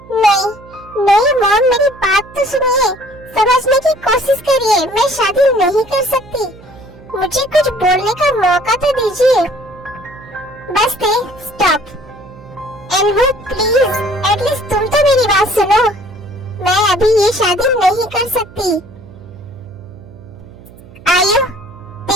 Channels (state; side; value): noise; right; hum, 21 dB below the sound